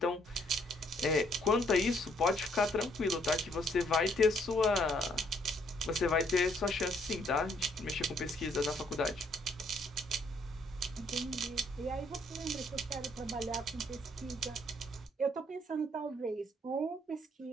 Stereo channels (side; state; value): both; normal; correlation 0.67